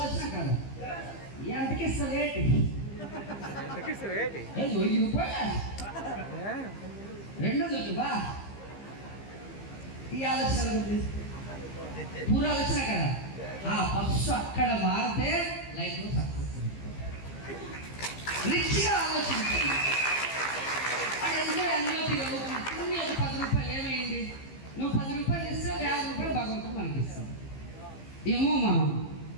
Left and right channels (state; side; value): late; right; 15 ms